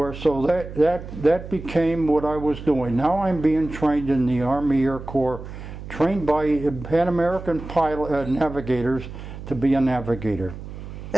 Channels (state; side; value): noise; right; hum, 11 dB below the sound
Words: so that became what I was doing. Now I'm being trained in the Army Air Corps, trained by Pan American pilot navigators to be a navigator.